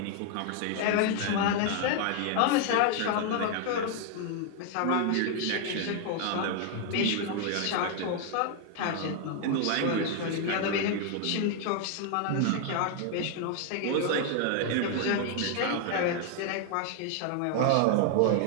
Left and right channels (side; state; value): both; different; correlation 0.00